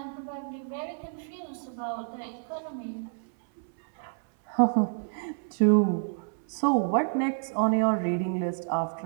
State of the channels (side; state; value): left; silent; 59 dB below the other